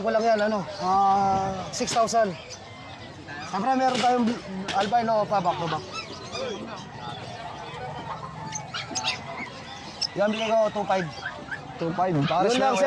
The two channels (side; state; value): both; identical; correlation 1.00